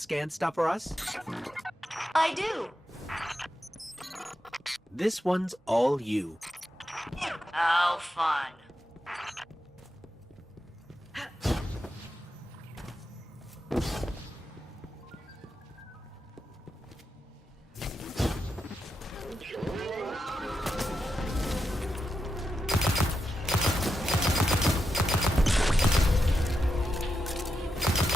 stuff for us? I do. This one's all you. How fun.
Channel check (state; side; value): normal; both; correlation 0.87